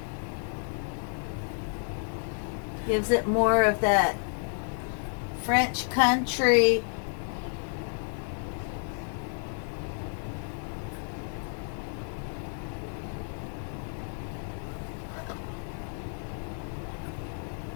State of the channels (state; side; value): silent; right; 56 dB below the other